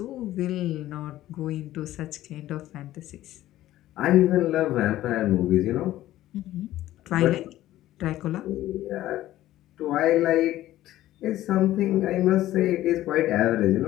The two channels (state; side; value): quieter; right; 14.5 dB